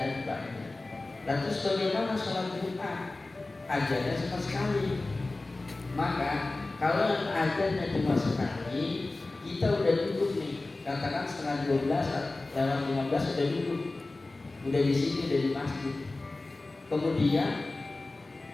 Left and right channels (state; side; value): quieter; right; 3.1 dB